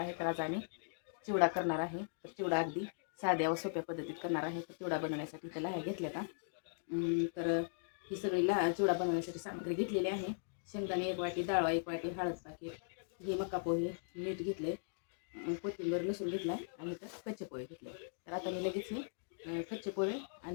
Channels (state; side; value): silent; right; digital silence